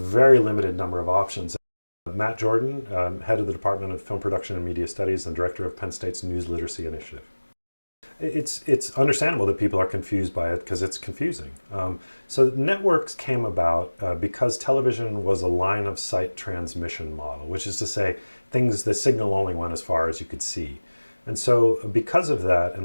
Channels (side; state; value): both; inverted; correlation -1.00